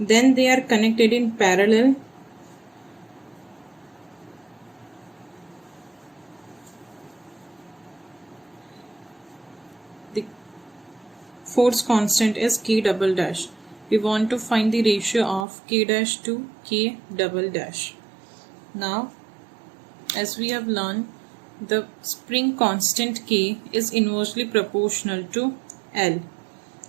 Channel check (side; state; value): left; drops out; at 15.5 s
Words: they are connected in parallel. The force constant is K double dash. We want to find the ratio of K dash to K double dash. Now, as we have learned, the spring constant K is inversely proportional to L.